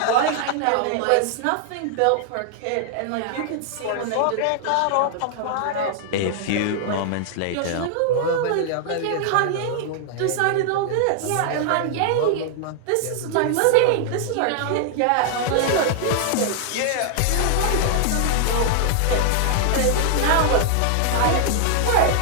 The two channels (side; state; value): both; different; correlation 0.00